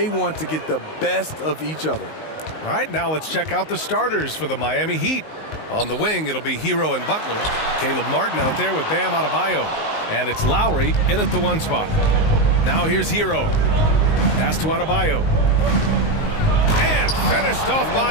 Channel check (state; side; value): late; right; 19 ms